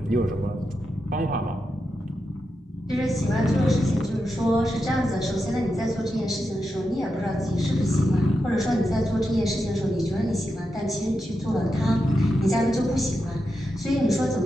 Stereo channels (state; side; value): normal; both; correlation 0.87